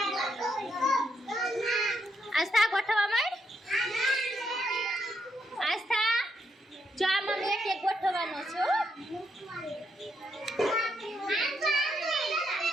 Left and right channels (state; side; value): normal; both; correlation 0.79